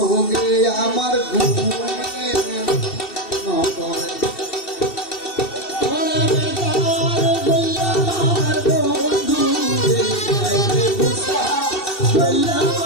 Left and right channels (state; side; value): late; right; 2.7 ms